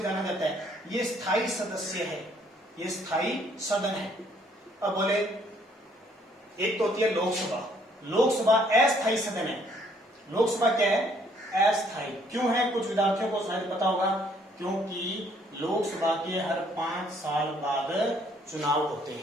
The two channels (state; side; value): normal; both; correlation 0.65